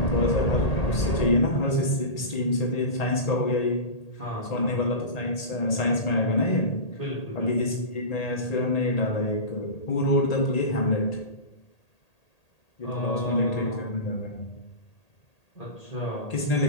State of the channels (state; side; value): late; right; 1.8 ms